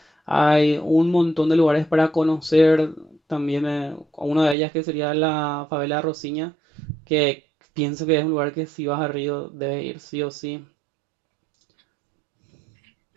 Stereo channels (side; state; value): left; drops out; at 4.5 s